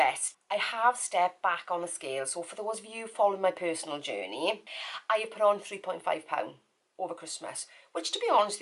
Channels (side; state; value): both; identical; correlation 1.00